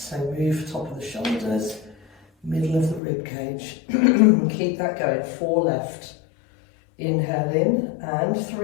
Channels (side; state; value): right; drops out; at 3.0 s